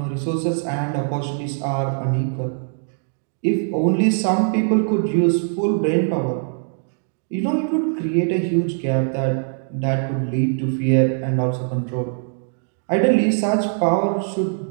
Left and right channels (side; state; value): left; silent; digital silence